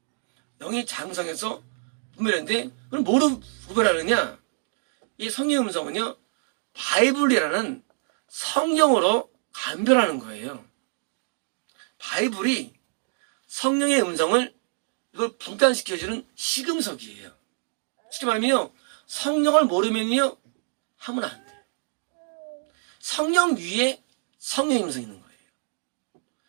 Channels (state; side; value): silent; left; digital silence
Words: 영이 장성해서 분별했는데, 그럼 뭐로 구별하느냐? 이 성령 음성은요, 바이블이라는 성경으로 감별하는 거예요. 바이블이 성령의 음성을 이걸 분간시켜주는 시금석이에요. 쉽게 말하면요, 성령을 모르면요, 하면 안 돼요. 성령 위에 성령의 음성이 있는 거예요.